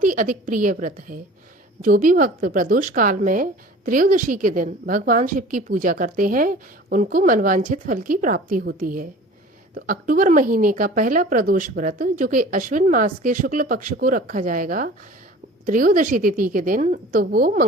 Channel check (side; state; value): both; normal; correlation 0.43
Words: ही अधिक प्रिय व्रत है। जो भी भक्त प्रदोष काल में त्रयोदशी के दिन भगवान शिव की पूजा करते हैं उनको मनवांछित फल की प्राप्ति होती है। तो अक्टूबर महीने का पहला प्रदोष व्रत जो कि अश्विन मास के शुक्ल पक्ष को रखा जाएगा त्रयोदशी तिथि के दिन, तो वो